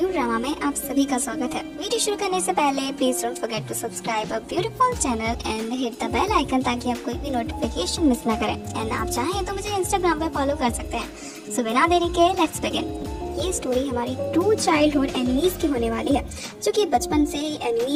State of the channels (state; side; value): identical; both; correlation 1.00